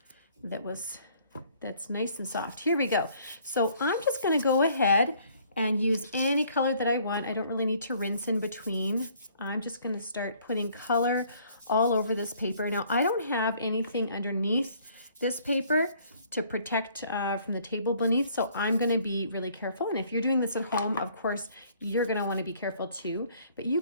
that's nice and soft. Here we go. So I'm just gonna go ahead and use any color that I want. I don't really need to rinse in between. I'm just gonna start putting color all over this paper. Now, I don't have anything underneath this paper to protect from the table beneath, so I'm going to be really careful. And if you're doing this at home, of course, you're going to want to be careful too. But you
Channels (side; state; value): both; inverted; correlation -0.60